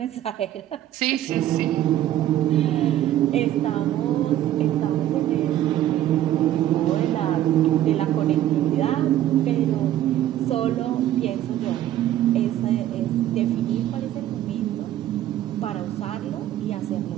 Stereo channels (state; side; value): quieter; left; 12.6 dB